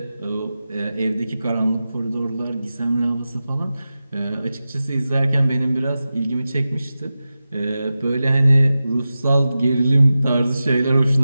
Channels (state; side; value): inverted; both; correlation -0.94